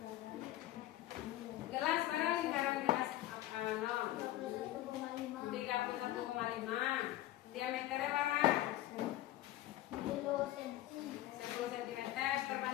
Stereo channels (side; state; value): right; quieter; 14.8 dB